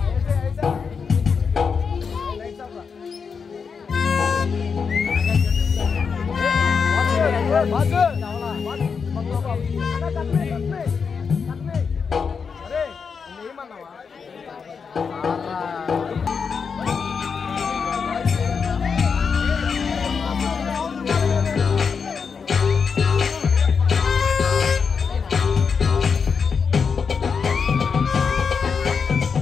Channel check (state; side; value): quieter; right; 5.8 dB